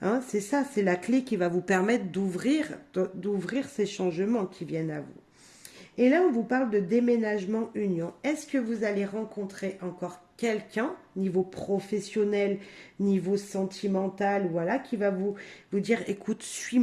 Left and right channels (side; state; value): both; identical; correlation 1.00